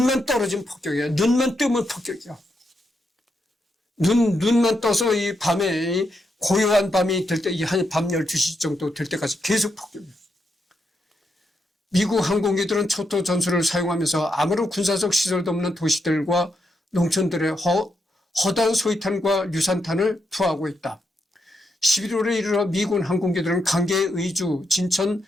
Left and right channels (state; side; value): normal; both; correlation 0.82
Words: 떨어지면 폭격이야. 눈만 뜨면 폭격이야. 눈만 떠서 이 밤에 고요한 밤이 될 때, 한 밤 12시 정도 될 때까지 계속 폭격이야. 미국 항공기들은 초토 전술을 사용하면서 아무런 군사적 시설도 없는 도시들과 농촌들의 허다한 소위탄과 유산탄을 투하하고 있다. 11월에 이르러 미군 항공기들은 강계, 의주, 진천,